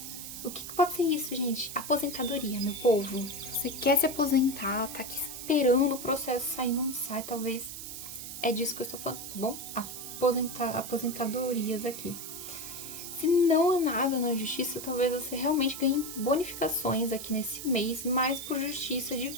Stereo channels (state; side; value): noise; right; hiss, 9 dB below the sound